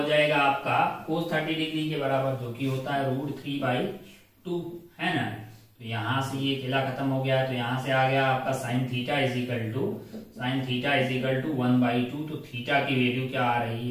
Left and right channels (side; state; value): both; identical; correlation 1.00